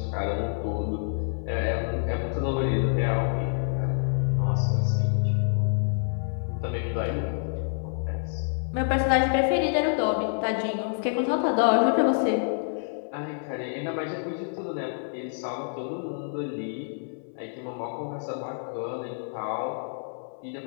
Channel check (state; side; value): silent; right; 60 dB below the other